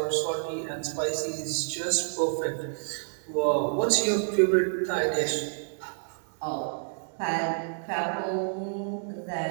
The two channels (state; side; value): silent; left; digital silence